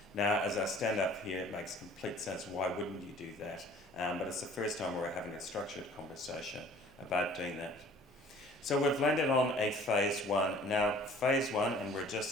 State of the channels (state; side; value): normal; both; correlation 0.51